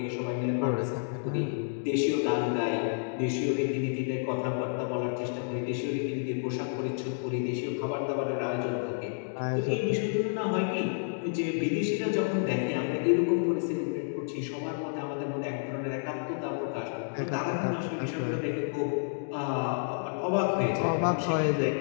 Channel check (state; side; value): silent; right; digital silence